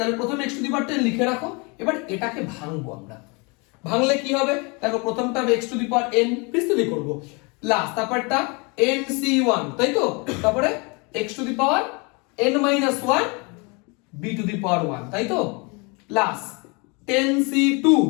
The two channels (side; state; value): right; quieter; 30.2 dB